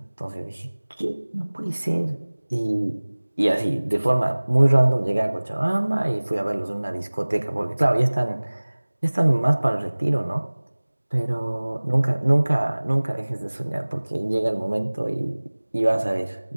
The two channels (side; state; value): both; inverted; correlation -1.00